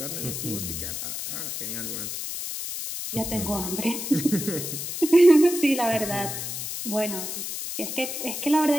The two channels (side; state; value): left; noise; hiss, 5 dB below the sound